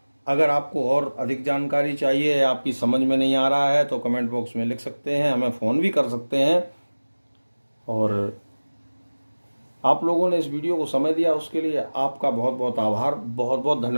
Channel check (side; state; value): both; inverted; correlation -1.00